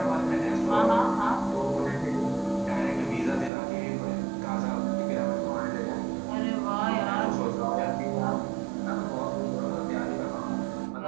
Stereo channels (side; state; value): left; drops out; at 3.5 s